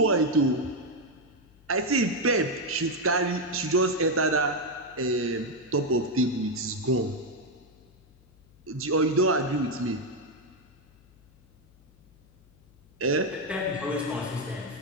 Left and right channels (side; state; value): left; noise; hum, 29 dB below the sound